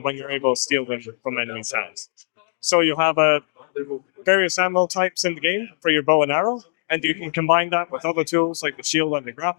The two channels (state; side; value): silent; right; digital silence